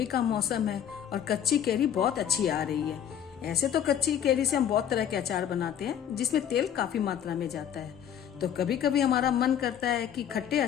का मौसम है और कच्ची केरी बहुत अच्छी आ रही है। ऐसे तो कच्ची केरी से हम बहुत तरह के अचार बनाते हैं जिसमें तेल काफी मात्रा में जाता है। तो कभी कभी हमारा मन करता है कि खट्टे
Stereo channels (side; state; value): right; quieter; 9.5 dB